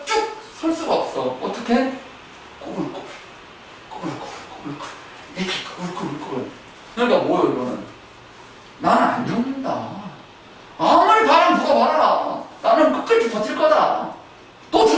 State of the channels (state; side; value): identical; both; correlation 1.00